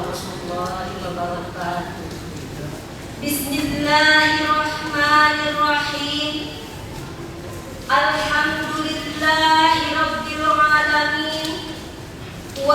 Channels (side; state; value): both; identical; correlation 1.00